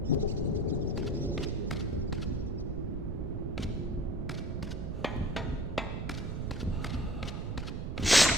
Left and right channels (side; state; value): right; noise; rumble, 3 dB below the sound